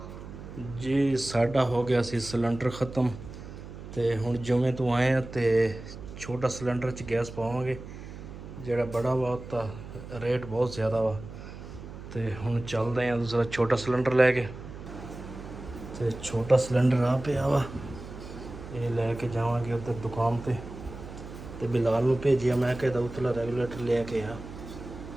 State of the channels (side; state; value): right; noise; hum, 13 dB below the sound